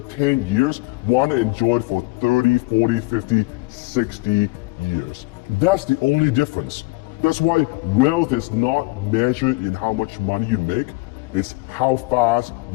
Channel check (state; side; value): quieter; right; 24.1 dB